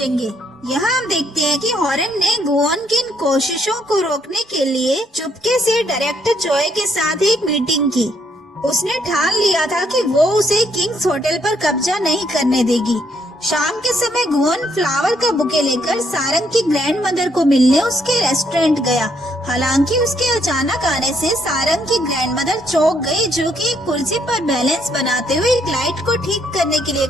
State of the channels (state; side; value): normal; both; correlation 0.72